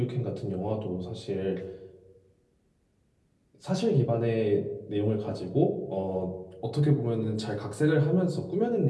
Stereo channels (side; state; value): both; identical; correlation 1.00